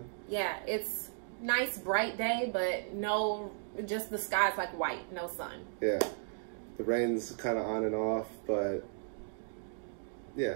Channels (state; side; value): silent; left; digital silence